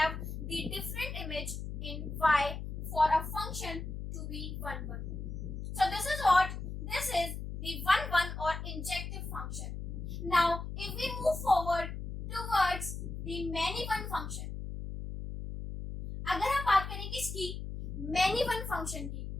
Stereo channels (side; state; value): left; noise; hum, 6 dB below the sound